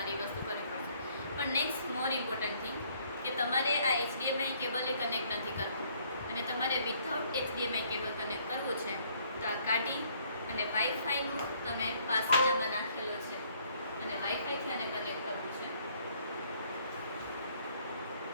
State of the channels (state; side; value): inverted; both; correlation -0.64